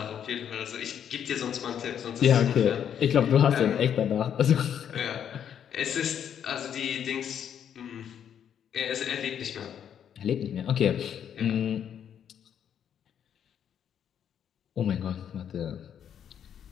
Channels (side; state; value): right; quieter; 8.9 dB